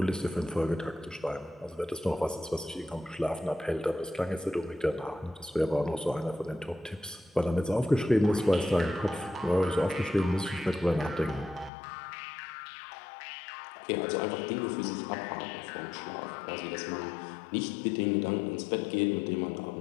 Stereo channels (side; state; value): right; drops out; at 11.7 s